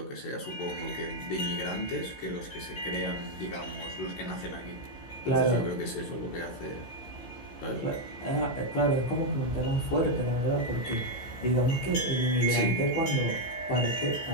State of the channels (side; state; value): right; late; 16 ms